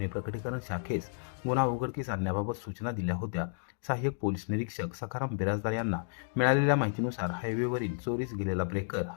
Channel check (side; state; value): right; silent; digital silence